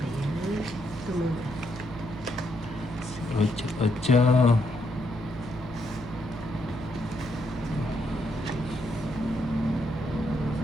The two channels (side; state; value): right; noise; hum, 14 dB below the sound